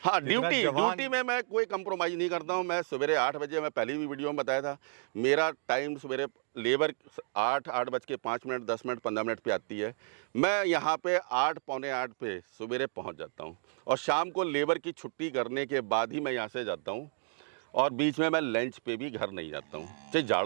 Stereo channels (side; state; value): left; silent; 57 dB below the other